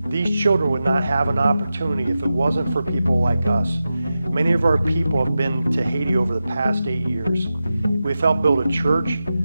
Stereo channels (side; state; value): both; inverted; correlation -0.92